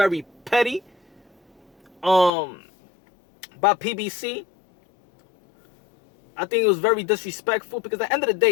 petty by PBC. I think it was very disrespectful because at the end of the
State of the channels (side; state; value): right; drops out; at 2.3 s